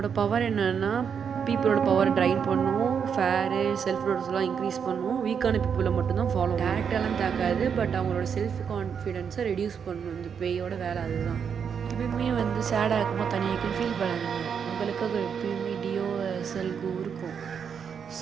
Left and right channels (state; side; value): quieter; left; 7.1 dB